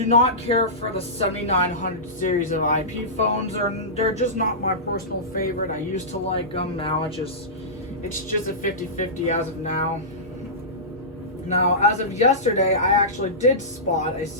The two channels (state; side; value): normal; both; correlation -0.17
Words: not care for the 7900 series of IP phones. They're just not my personal favorite. I used to like them. Now it's just a 50-50 as of now. Now, as of yesterday, I actually did spot a